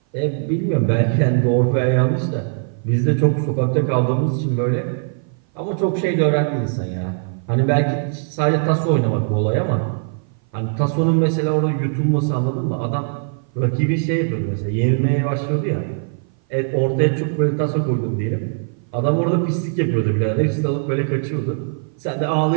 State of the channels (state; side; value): silent; left; 57 dB below the other